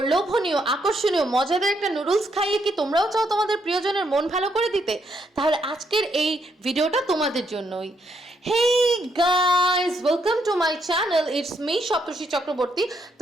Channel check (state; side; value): normal; both; correlation 0.75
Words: লোভনীয়, আকর্ষণীয়, মজাদার একটা নুডলস খাইয়ে কি তোমরাও চাও তোমাদের প্রিয়জনের মন ভালো করে দিতে? তাহলে আজকের এই ভিডিওটা তোমাদের জন্যই। Hey guys, welcome to my channel, it's me Saptarshi Chakraborty.